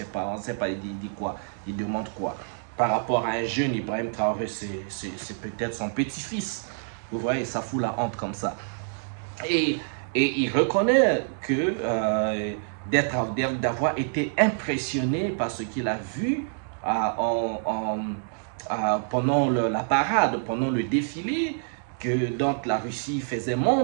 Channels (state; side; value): silent; left; digital silence